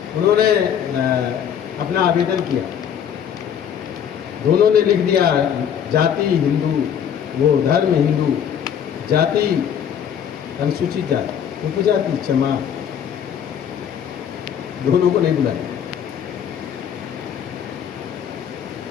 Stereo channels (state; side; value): quieter; right; 8.7 dB